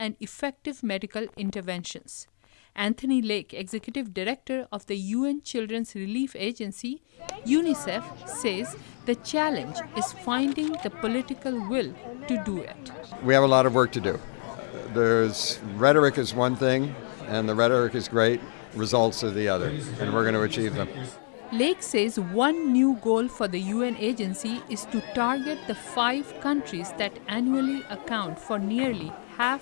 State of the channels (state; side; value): silent; right; digital silence